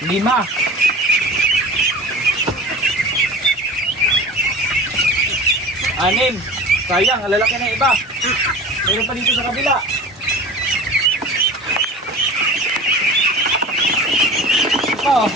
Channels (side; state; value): both; normal; correlation 0.37